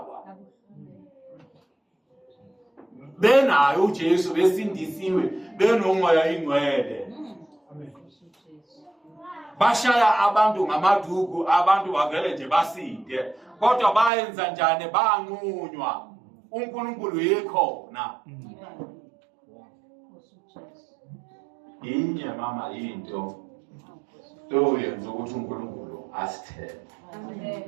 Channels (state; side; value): drops out; left; at 14.1 s